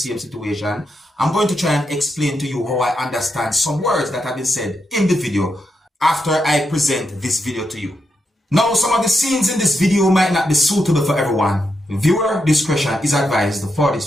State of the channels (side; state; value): both; normal; correlation 0.83